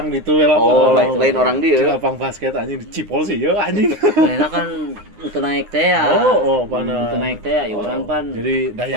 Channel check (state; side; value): late; left; 9.7 ms